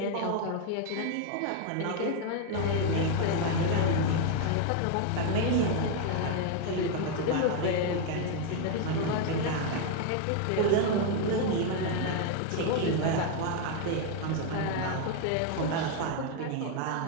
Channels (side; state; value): both; different; correlation 0.00